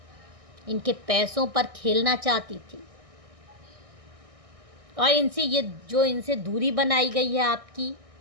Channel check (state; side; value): late; left; 1.6 ms